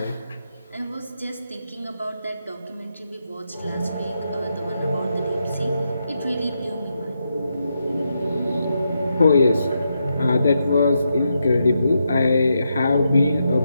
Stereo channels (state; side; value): inverted; both; correlation -0.83